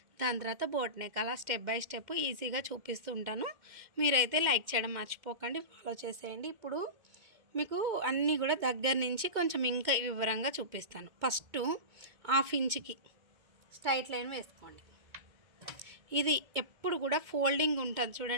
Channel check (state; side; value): late; left; 2.1 ms